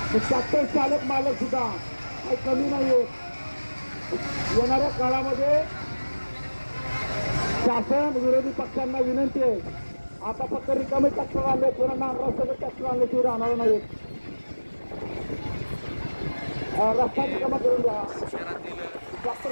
की ट्रॅक्टर चालक मालक सुद्धा काही कमी नाहीये. येणाऱ्या काळामध्ये शासन विरोधी पक्षांना विनंती आहे, आता फक्त रिकामे ट्रॅक्टर आणले, पुन्हा नांगरासह ट्रॅक्टर आणल्याशिवाय राहणार नाहीत. रस्ता रिकामा करून द्या.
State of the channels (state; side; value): inverted; both; correlation -1.00